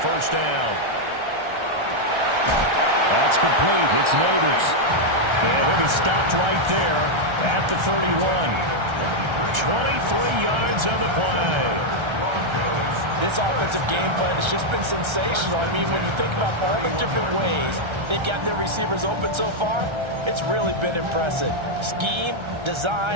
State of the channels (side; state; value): left; late; 1.3 ms